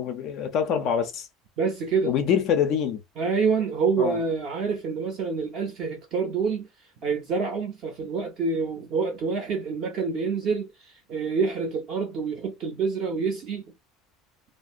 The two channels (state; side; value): normal; both; correlation 0.36